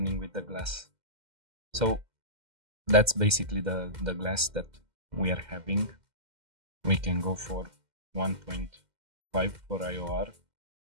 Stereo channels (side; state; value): left; late; 2.1 ms